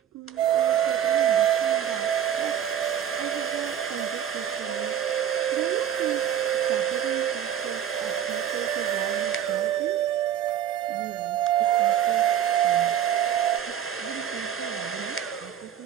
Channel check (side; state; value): left; quieter; 9.9 dB